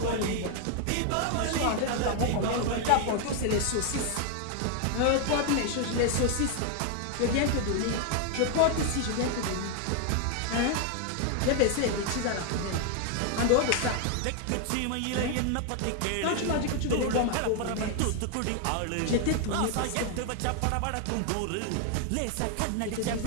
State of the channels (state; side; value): different; both; correlation 0.01